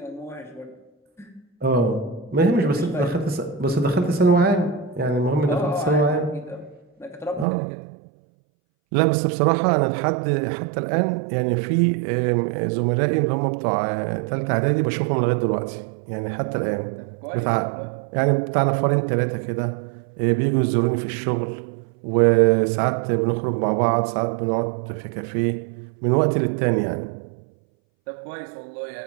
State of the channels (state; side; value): drops out; left; at 7.5 s